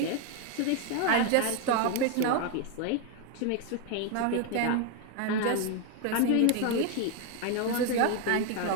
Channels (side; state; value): both; different; correlation 0.01